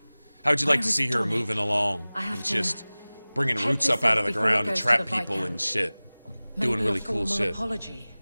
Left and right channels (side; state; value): both; inverted; correlation -0.99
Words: How would you like to see her moving along and just bringing roots up out of the ground to trap people and shit, doing really cool shit? Apology.